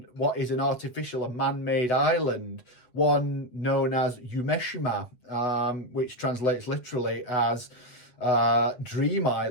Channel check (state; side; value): late; right; 8.2 ms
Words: what is an artificial and man-made island, one known as Umeshima, which translates literally as Dream